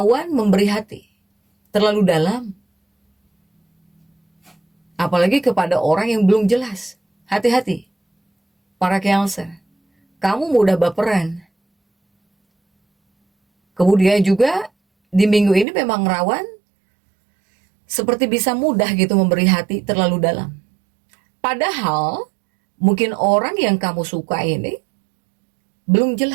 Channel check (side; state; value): left; drops out; at 15.7 s